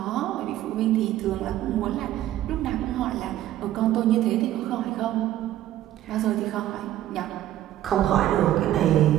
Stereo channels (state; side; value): quieter; left; 13.3 dB